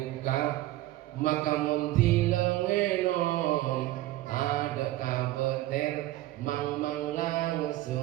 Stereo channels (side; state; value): left; quieter; 16.0 dB